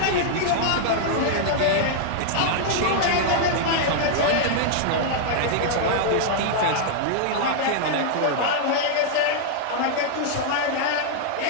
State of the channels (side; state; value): both; different; correlation -0.01